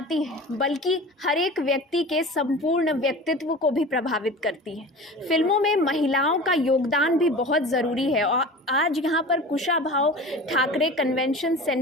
हैं बल्कि हर एक व्यक्ति के संपूर्ण व्यक्तित्व को भी प्रभावित करती हैं। फिल्मों में महिलाओं का योगदान भी बहुत ज़रूरी है और आज यहाँ पर कुशाभाव ठाकरे कन्वेंशन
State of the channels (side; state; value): both; normal; correlation 0.36